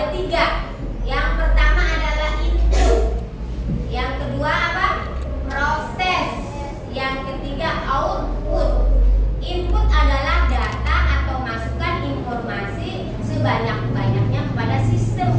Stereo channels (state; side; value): identical; both; correlation 1.00